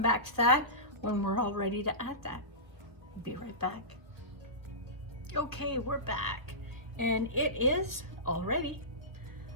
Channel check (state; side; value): late; left; 1.1 ms